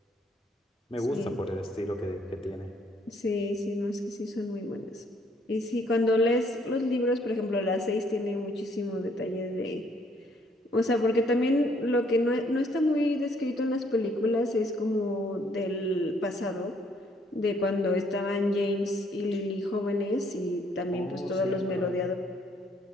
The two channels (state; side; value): normal; both; correlation 0.66